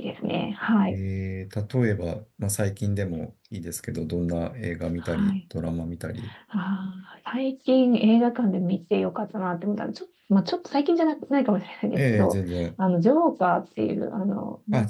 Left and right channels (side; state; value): both; identical; correlation 1.00